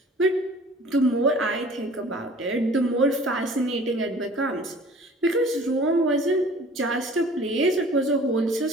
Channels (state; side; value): normal; both; correlation 0.48